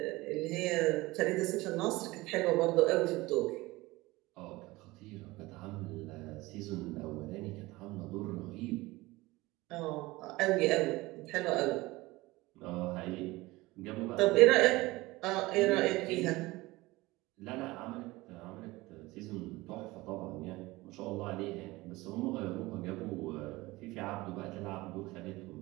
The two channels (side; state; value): left; quieter; 20.5 dB